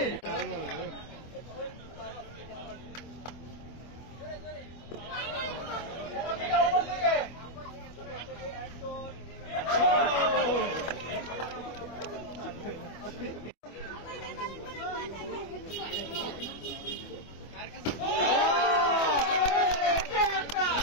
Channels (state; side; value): late; right; 25 ms